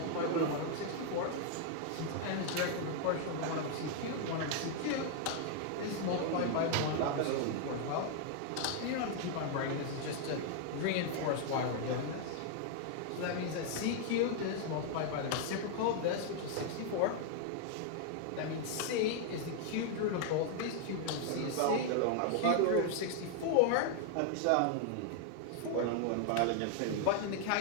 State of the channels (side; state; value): both; different; correlation 0.00